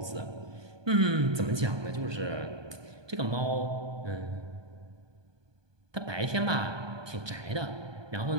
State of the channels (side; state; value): left; late; 1.2 ms